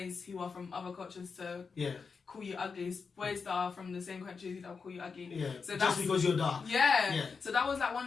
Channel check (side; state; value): right; quieter; 5.2 dB